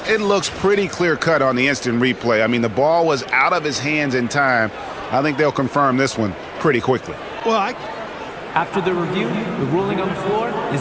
looks pretty clear-cut on the instant replay. I mean, the ball was out of his hands in time. I think they'll confirm this one pretty quickly. Well, After the review, the ruling on the floor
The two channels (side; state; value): both; identical; correlation 1.00